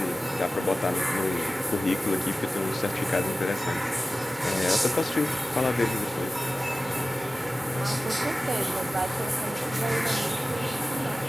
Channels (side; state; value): both; normal; correlation 0.96